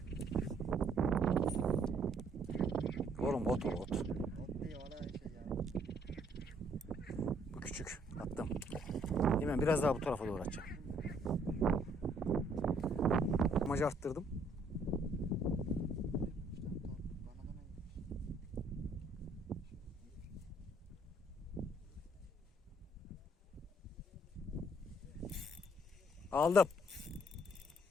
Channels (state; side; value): normal; both; correlation 0.65